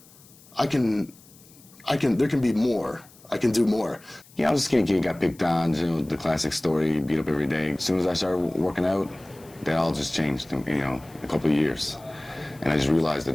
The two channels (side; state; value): left; noise; hiss, 25 dB below the sound